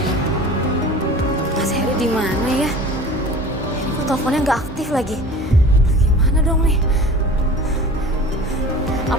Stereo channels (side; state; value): both; normal; correlation 0.40